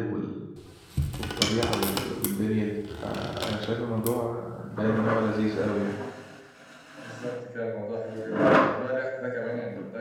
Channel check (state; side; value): identical; both; correlation 1.00